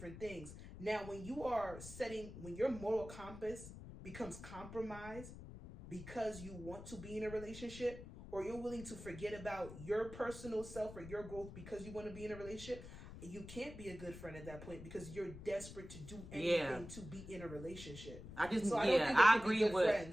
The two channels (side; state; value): left; noise; rumble, 13 dB below the sound